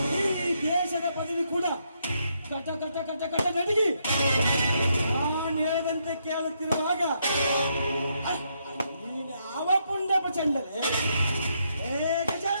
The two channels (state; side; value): inverted; both; correlation -0.77